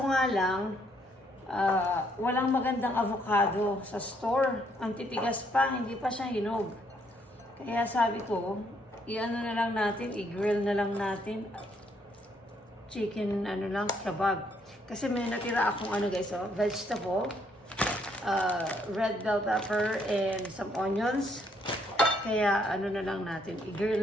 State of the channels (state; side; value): normal; both; correlation 0.70